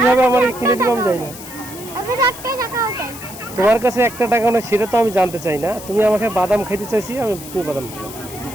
আমার কিনে দিবো আমি জানি না। তোমার কাছে একটা টাকা না, সেটা তো আমি জানতে চাই না। তুমি আমাকে বাদাম খাইতে চাইছি, আমি তুমি বাদাম দিবা।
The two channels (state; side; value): noise; left; hiss, 14 dB below the sound